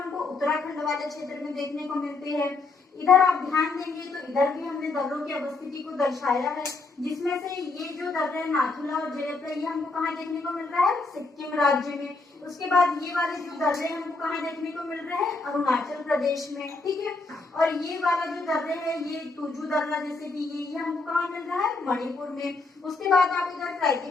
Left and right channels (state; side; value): quieter; right; 3.7 dB